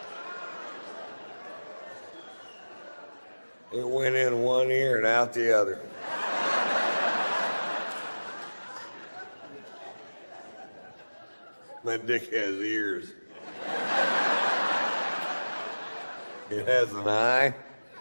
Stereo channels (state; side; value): inverted; both; correlation -1.00